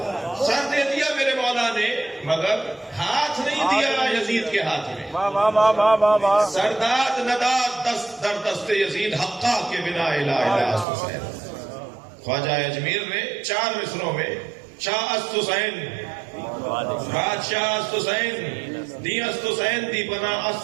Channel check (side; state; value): left; drops out; at 10.9 s